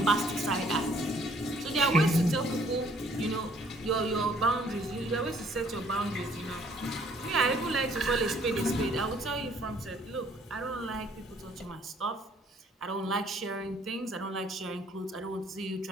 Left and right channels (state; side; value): normal; both; correlation 0.61